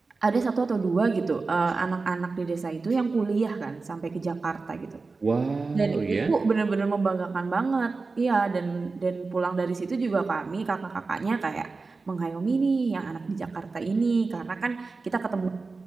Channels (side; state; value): left; quieter; 4.0 dB